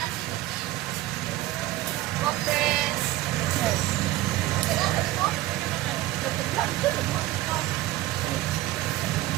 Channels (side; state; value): left; quieter; 16.3 dB